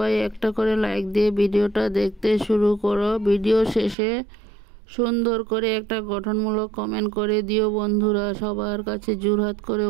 একটা করে লাইক দিয়ে ভিডিওটা দেখতে শুরু করো। ভিডিও শেষে সুন্দর করে একটা গঠনমূলক কমেন্ট করে দিও বন্ধুরা। সবার কাছে জোরহাত করে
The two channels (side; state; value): left; drops out; at 4.0 s